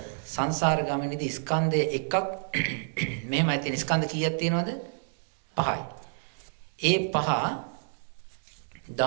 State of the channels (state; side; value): silent; left; digital silence